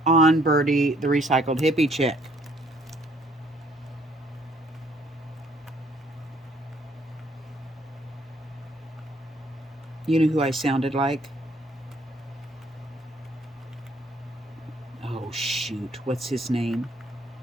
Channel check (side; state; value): both; normal; correlation 0.63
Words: on Birdie, the Recycled Hippie Chick. You know who I sounded like? Oh, shoot. What's his name?